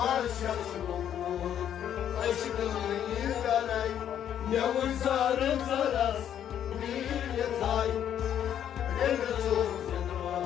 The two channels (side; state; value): right; quieter; 9.9 dB